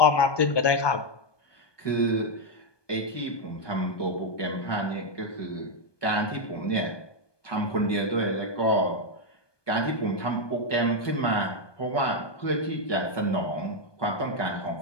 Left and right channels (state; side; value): late; right; 1.2 ms